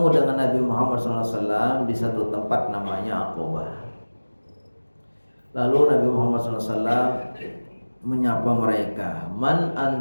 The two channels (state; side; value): inverted; both; correlation -1.00